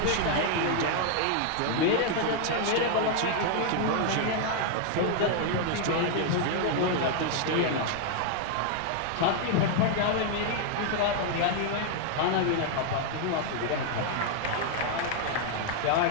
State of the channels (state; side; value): different; both; correlation 0.00